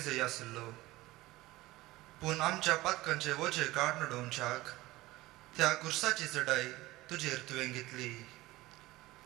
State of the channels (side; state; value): left; quieter; 18.5 dB